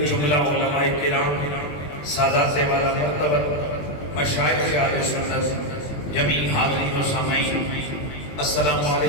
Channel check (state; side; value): late; right; 20 ms